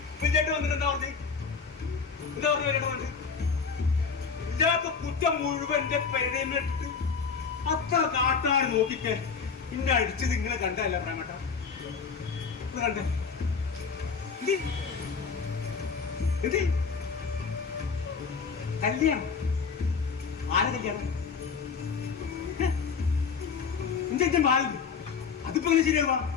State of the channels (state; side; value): quieter; right; 5.6 dB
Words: വിജയേട്ട് വന്നിട്ട് എന്താ പറഞ്ഞു വിജയേട്ട് പറഞ്ഞു ഇല്ലാത്ത കുറ്റം മുഴുവൻ എന്റെ പെരേമിട്ട് അത്ര കാട്ടാൻ നോക്കിക്കെ ഇന്നെ അടിച്ചത് ഇങ്ങനെ കണ്ടല്ല പ്രേമട്ട കണ്ട എന്ത് കല്യാണം ആരെ കല്യാണം എന്റെ ബാലു അതിപ്പോ എങ്ങനെ ശരിയാവാ